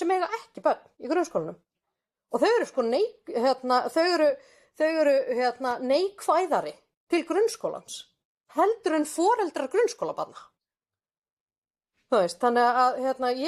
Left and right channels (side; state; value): both; identical; correlation 1.00